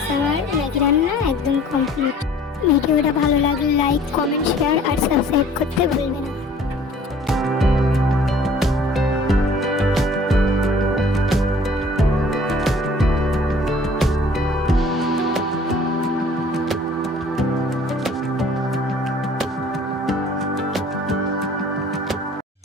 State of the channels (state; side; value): normal; both; correlation 0.52